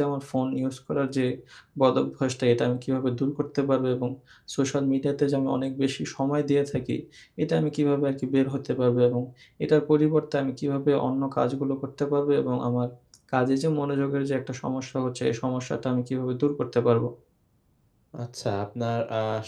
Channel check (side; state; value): both; identical; correlation 1.00